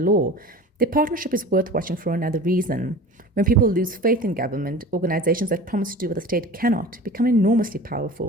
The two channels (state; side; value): normal; both; correlation 0.38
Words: Their partnership is worth watching for another reason. When people lose faith in government, organizations that promise to do what the state cannot become enormously